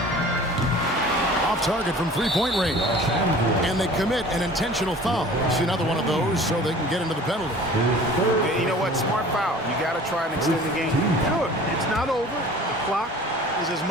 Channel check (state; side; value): normal; both; correlation 0.45